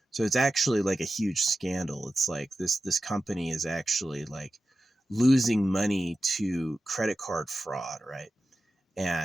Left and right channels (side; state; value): both; normal; correlation 0.93